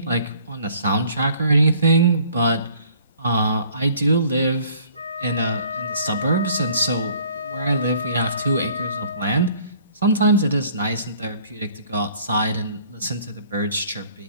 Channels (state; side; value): inverted; both; correlation -0.56